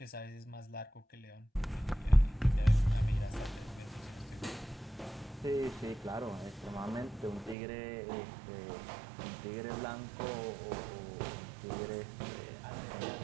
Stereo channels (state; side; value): drops out; left; at 7.6 s